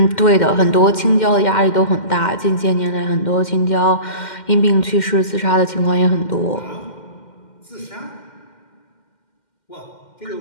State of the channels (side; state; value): right; late; 2.1 ms